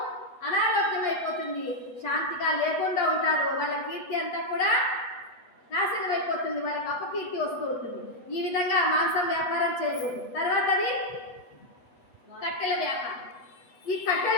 అనారోగ్యమైపోతుంది, శాంతిగా లేకుండా ఉంటారు, వాళ్ళ కీర్తి అంతా కూడా నాశనం అయిపోతుంది, వాళ్ళకి అపకీర్తి వస్తూ ఉంటుంది. ఈ విధంగా మాంసం వ్యాపారం చేయకూడదు. తర్వాతది కట్టెల వ్యాపారం. ఈ కట్టెల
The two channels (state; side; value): late; right; 8.1 ms